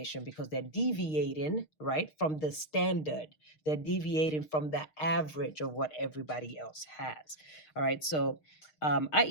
because they're deviating, right, from the standard. They're deviating from the average of what everybody else has. All right, so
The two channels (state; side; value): late; right; 6.5 ms